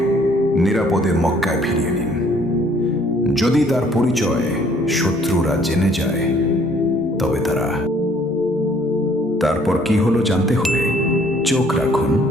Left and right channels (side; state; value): both; normal; correlation 0.60